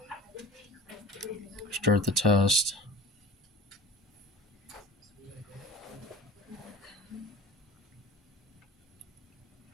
Start the test.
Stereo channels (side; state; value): both; normal; correlation 0.39